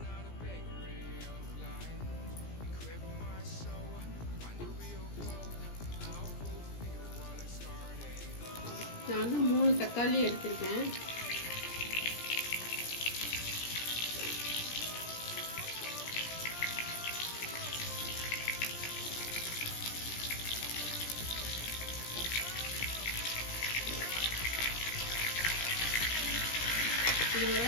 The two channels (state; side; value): late; right; 17 ms